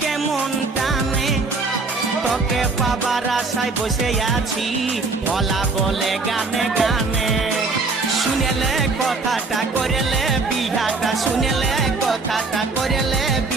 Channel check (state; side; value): quieter; left; 3.9 dB